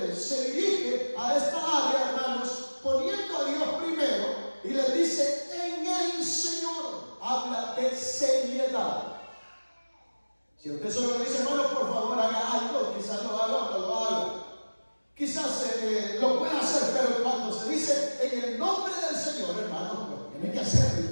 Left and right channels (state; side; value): inverted; both; correlation -1.00